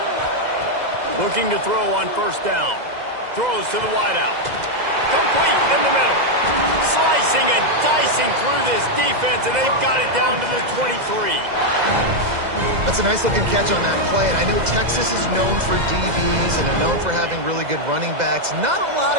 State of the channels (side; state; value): left; late; 2.0 ms